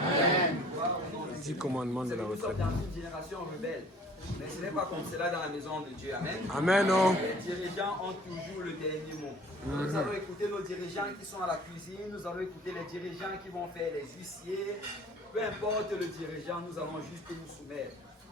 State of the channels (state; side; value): normal; both; correlation 0.51